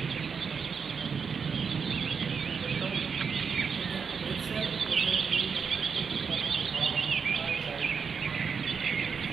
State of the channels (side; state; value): left; quieter; 6.0 dB